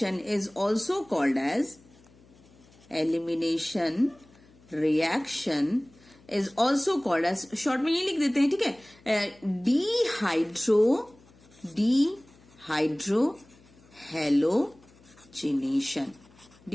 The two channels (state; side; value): noise; left; hum, 27 dB below the sound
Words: is also called as, elimination reaction is also called as, short में ये लिख देते हैं। ठीक है, dehydrohalogenation,